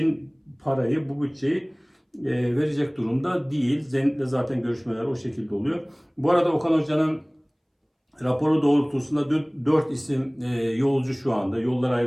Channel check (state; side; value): identical; both; correlation 1.00